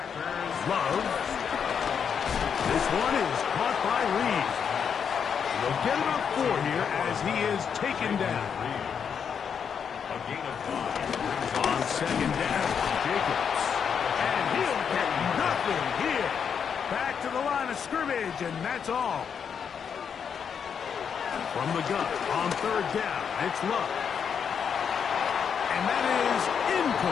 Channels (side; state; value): right; quieter; 7.1 dB